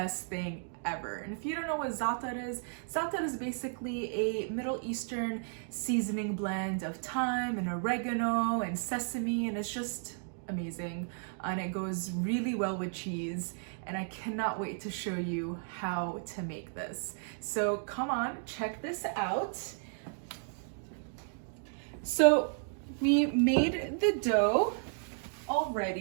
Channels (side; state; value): left; silent; digital silence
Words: thing ever. And if you don't know what za'atar is basically a Middle Eastern seasoning blend of thyme and oregano and sesame, and it's just amazing. And it goes really well with cheese, and I cannot wait to show you how to make this. So come on, check this out. So we made the dough